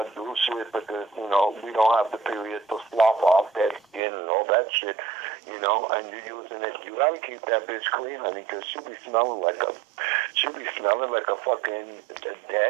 do shit because, you know, we don't have the period to slop off that skin and all that shit, you know, and you're using it. You gotta keep that bitch clean, honey, because she be smelling like a fucking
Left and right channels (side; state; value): left; drops out; at 4.0 s